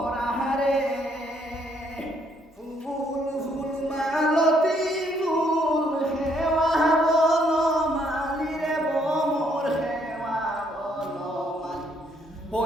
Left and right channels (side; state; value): both; normal; correlation 0.69